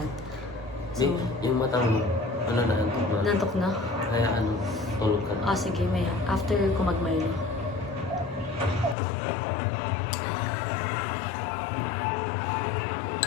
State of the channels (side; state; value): right; drops out; at 9.0 s